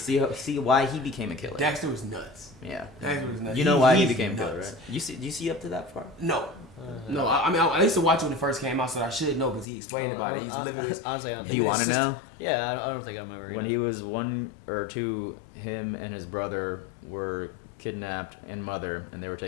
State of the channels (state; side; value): drops out; right; at 9.7 s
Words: why he became a killer. Dexter was nuts. Yeah. Dexter was nuts. You know why he he's became a killer, nuts. right? Do you see up to that far? No. No, I mean, I used to watch it when it first came out, so I should know because he explained about it. He's living his. Honestly, I don't Do you want to know? Yeah, I don't think I'm ever. When he was 1 or 2, him and his brother were kidnapped and mother, and they were